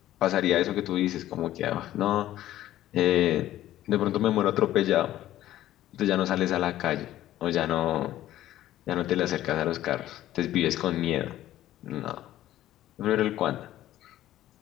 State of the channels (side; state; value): right; quieter; 13.7 dB